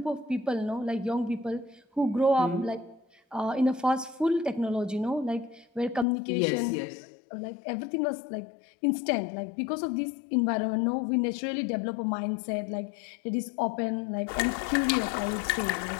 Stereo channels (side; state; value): right; drops out; at 6.1 s